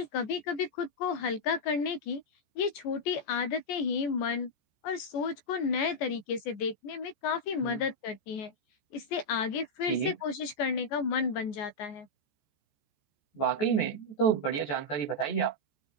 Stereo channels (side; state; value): right; late; 14 ms